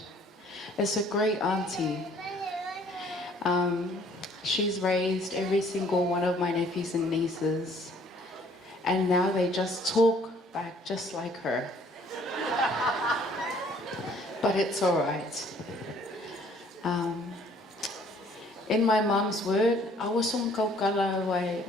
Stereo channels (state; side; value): normal; both; correlation 0.59